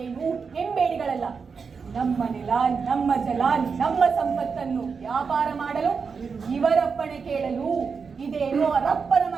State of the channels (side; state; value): left; quieter; 5.5 dB